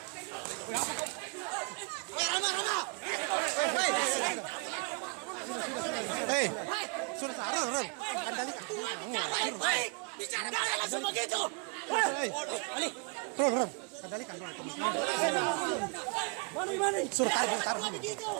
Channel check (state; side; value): quieter; left; 32.0 dB